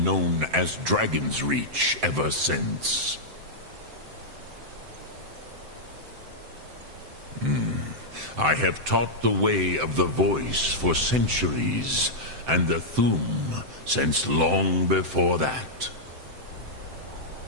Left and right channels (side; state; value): left; late; 7.8 ms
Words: known as Dragon's Reach ever since. I have taught the way of the voice for centuries, and the Thum since long before that.